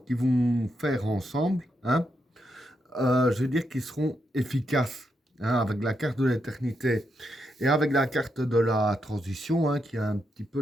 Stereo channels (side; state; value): both; normal; correlation 0.82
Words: qu'ils vont faire ensemble, hein, je veux dire qu'ils seront efficaces. Hein, avec la carte de l'éternité et avec la carte de la transition, hein, qui est un petit peu